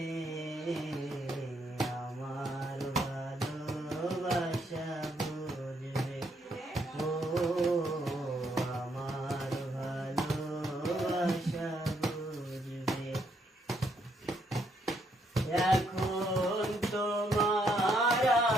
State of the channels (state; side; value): normal; both; correlation 0.73